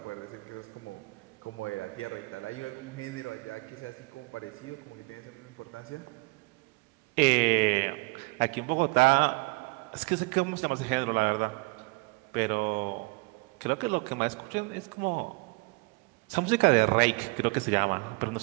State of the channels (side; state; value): left; quieter; 28.1 dB